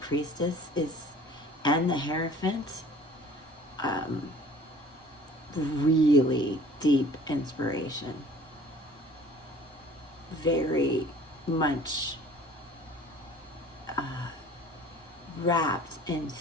and the Hierophant, really deep inspiration, very much wrapped in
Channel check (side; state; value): both; normal; correlation 0.49